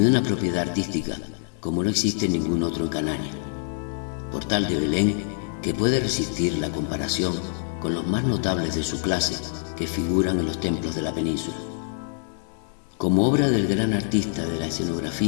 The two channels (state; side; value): silent; right; digital silence